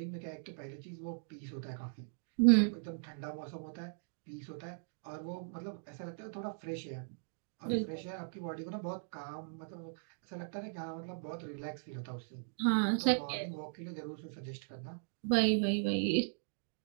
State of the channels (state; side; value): silent; left; digital silence